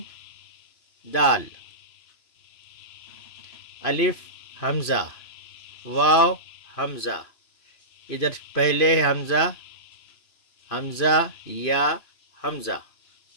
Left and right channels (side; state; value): right; late; 3.0 ms